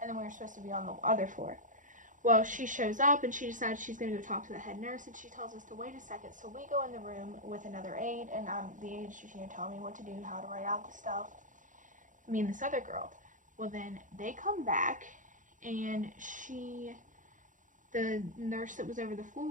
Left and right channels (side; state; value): left; late; 0.37 ms